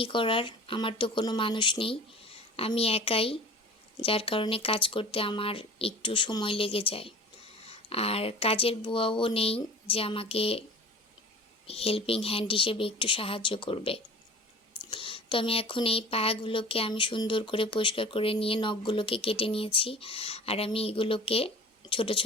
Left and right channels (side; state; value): both; normal; correlation 0.40